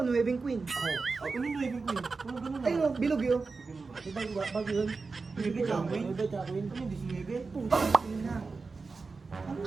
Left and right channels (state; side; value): quieter; left; 4.3 dB